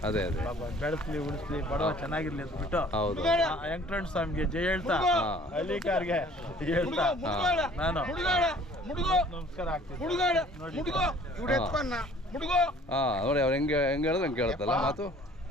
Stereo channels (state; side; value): normal; both; correlation 0.53